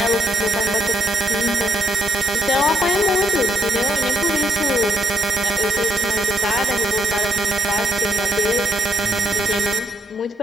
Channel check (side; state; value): both; normal; correlation 0.74